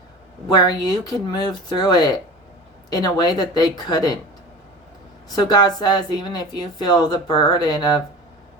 where you can move through it in a way that they couldn't. So God says, even if you feel the burden of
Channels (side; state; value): both; normal; correlation 0.35